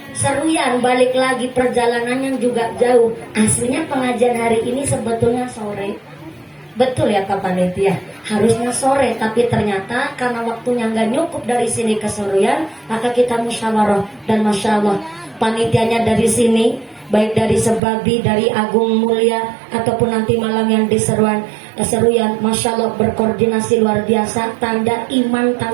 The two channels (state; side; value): drops out; left; at 17.8 s